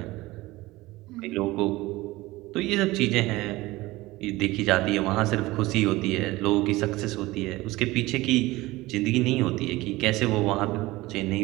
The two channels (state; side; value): quieter; left; 19.5 dB